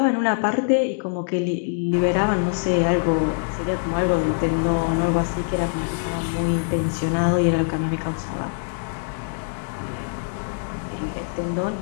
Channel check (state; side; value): silent; right; digital silence